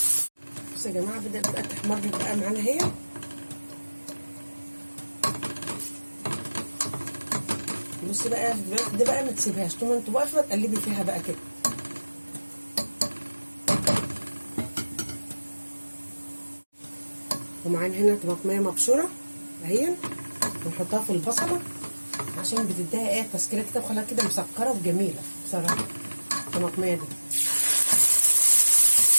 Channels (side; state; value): both; inverted; correlation -1.00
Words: بصوا يا جماعه بدات بقى تحمر بقى معانا اهي. بصي بقى ده بقى ما تسيبهاش طول ما انت واقفه تقلبي فيها بقى كده. ومعانا هنا طماطميه مبشوره اهي، ونحطها في البصله عشان بتديها ايه تسكيره كده وخلاها كده مسكره وجميله بصراحه الطماطميه دي.